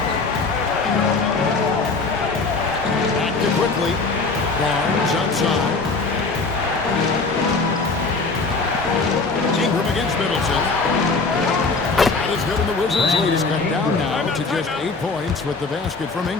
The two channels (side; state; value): right; quieter; 4.0 dB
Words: Back to quickly. Barnes outside. Ingram against Middleton. That is good, and the Wizards' lead is cut down now to just 8 points with the basket from